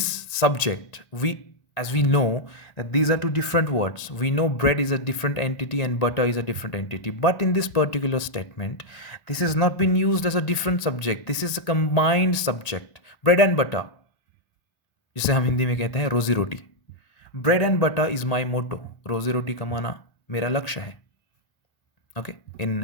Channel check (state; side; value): late; right; 1.7 ms